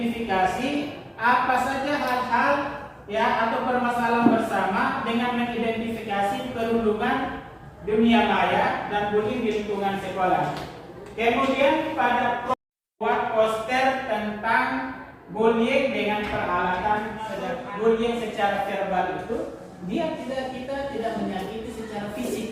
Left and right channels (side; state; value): both; identical; correlation 1.00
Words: apa saja hal-hal ya atau permasalahan bersama dengan mengidentifikasi perundungan dunia maya dan bullying di lingkungan sekolah. Kemudian pada buat poster tentang bullying dengan peralatan bullying secara verbal itu kita tidak menyakiti secara